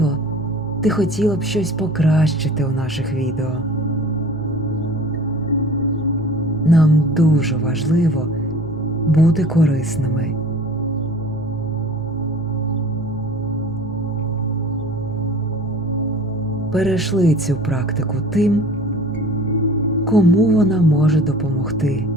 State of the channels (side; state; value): both; normal; correlation 0.44